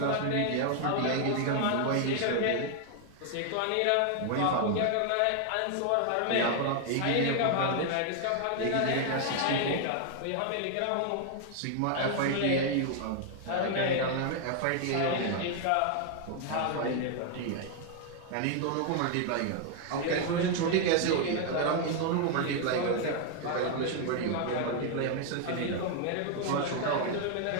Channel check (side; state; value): both; different; correlation 0.00